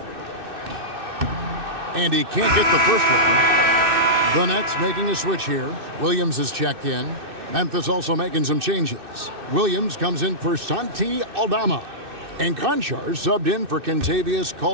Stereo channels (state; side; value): late; left; 2.6 ms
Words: And he can't get the first one. The Nets making a switch here. Williams is checked in. Memphis also making some changes. Williams comes in for Santi Aldama. And Conchar subbed in for Kentavious